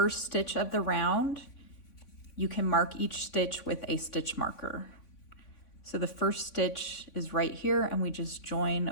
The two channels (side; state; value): right; late; 3.5 ms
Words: stitch of the round, you can mark each stitch with a stitch marker. So the first stitch is right here and we just